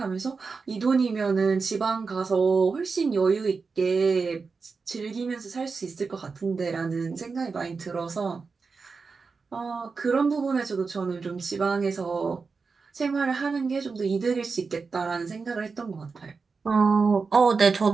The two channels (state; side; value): quieter; left; 4.7 dB